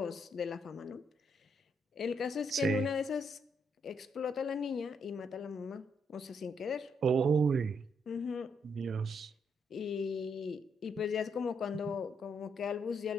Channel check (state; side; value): normal; both; correlation 0.76